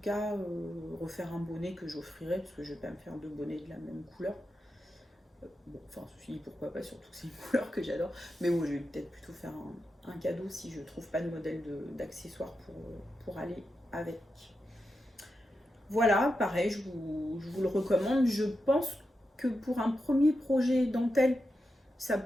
cas refaire un bonnet que j'offrirai, parce que je vais pas me faire deux bonnets de la même couleur. Bon, enfin, ceci dit, pourquoi pas, surtout que c'est une couleur que j'adore. Mais bon, je vais peut-être plutôt faire un cadeau si je trouve pas de modèle d'accessoires pour aller avec. Voilà, pareil, je vous le recommande. Je pense que pour un premier projet dentelle, ça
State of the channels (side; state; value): both; normal; correlation 0.88